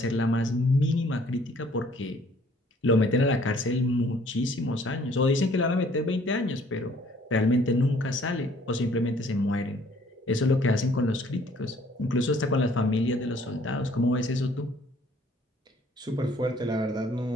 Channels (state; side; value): normal; both; correlation 0.59